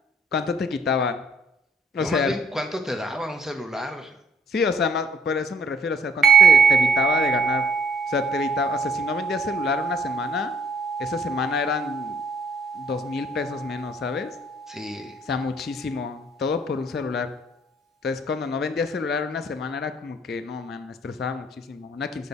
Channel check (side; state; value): both; normal; correlation 0.63